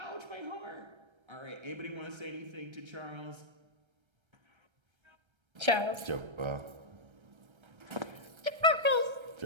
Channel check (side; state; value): left; late; 1.3 ms